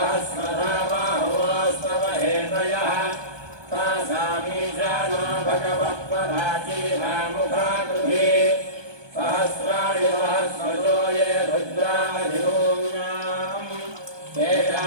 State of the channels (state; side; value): late; left; 1.2 ms